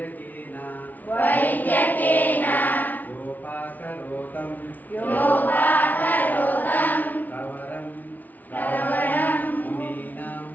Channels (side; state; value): right; late; 0.080 ms